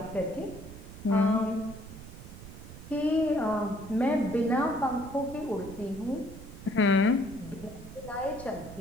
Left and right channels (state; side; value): noise; right; rumble, 14 dB below the sound